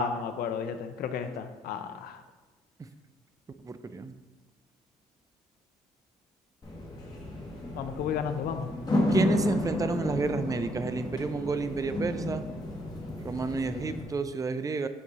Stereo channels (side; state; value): both; normal; correlation 0.71